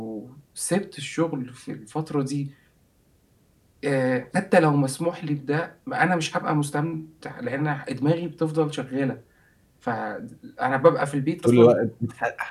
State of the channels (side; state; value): both; identical; correlation 1.00